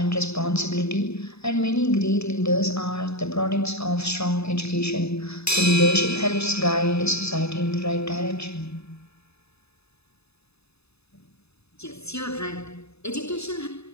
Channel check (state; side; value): late; right; 0.79 ms